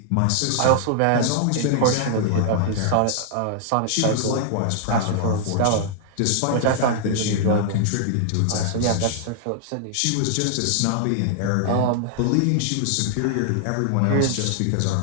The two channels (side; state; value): both; different; correlation -0.01